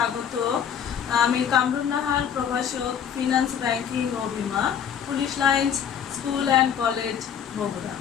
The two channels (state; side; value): quieter; right; 8.3 dB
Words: আমি কামরুন নাহার, প্রভাষক, ফিনান্স, ব্যাংকিং ও বিমা, police lines school and college, Bogura.